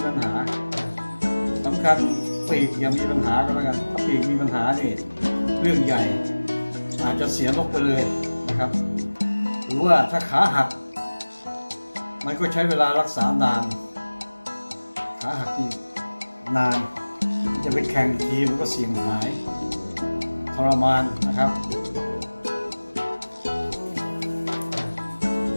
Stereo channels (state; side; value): inverted; both; correlation -1.00